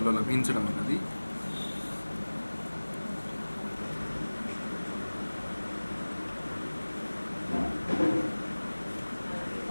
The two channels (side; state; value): both; inverted; correlation -1.00